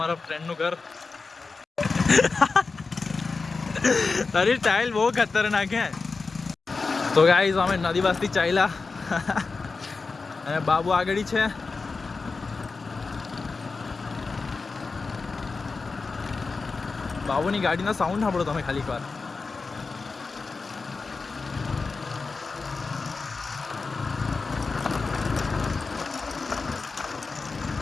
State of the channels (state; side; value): quieter; right; 4.3 dB